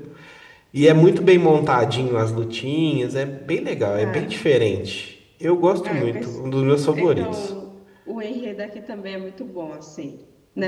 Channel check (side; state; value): both; identical; correlation 1.00